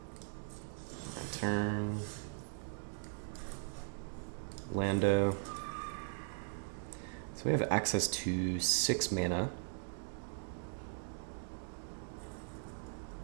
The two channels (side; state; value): left; silent; digital silence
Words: Turn. Lando. So we have access to 6 mana.